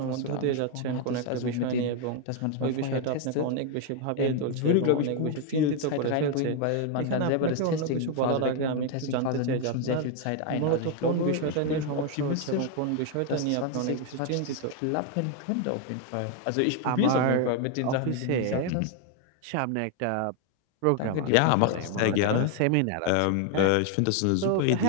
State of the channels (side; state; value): both; different; correlation 0.00